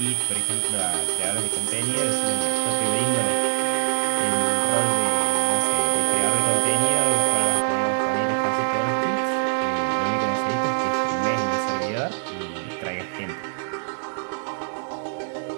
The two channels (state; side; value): silent; left; digital silence